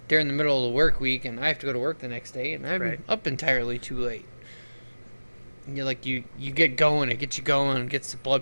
during the middle of the work week, and I have to go to work the next day, and I'm Right. up entirely too late. And you're like, you get going, it gets you going, gets the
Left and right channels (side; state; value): both; inverted; correlation -1.00